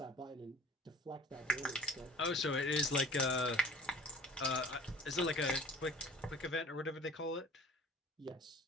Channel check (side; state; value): both; normal; correlation 0.46